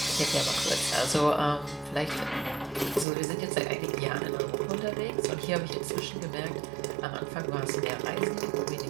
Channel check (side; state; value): left; drops out; at 3.1 s